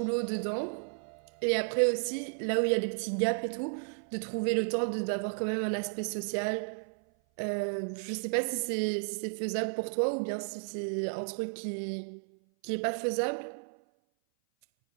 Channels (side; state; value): left; silent; 56 dB below the other